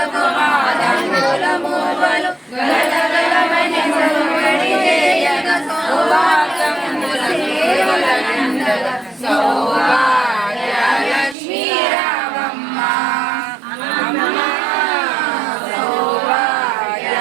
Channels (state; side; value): drops out; left; at 11.4 s